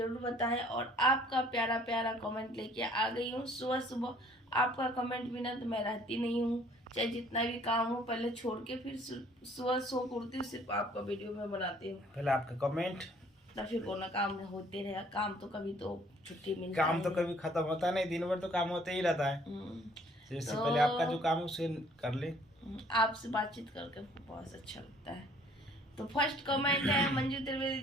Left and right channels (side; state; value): both; normal; correlation 0.58